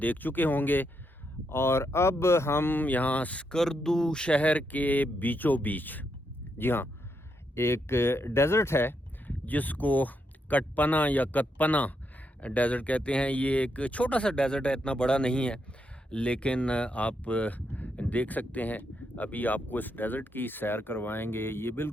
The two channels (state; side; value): normal; both; correlation 0.81